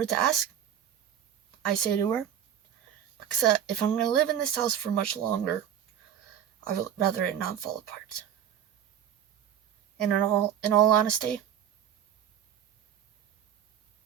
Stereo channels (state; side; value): quieter; left; 9.6 dB